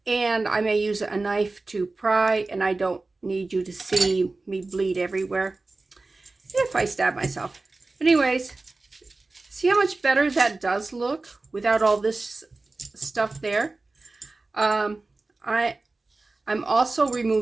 and I may use a knife to pry, and I don't need you to see me bleed everywhere if I stab myself. Anyways, see how much better that does look without all this stuff there. I'm also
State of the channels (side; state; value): left; quieter; 3.4 dB